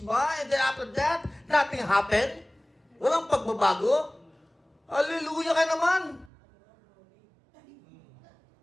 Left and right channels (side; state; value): left; drops out; at 6.3 s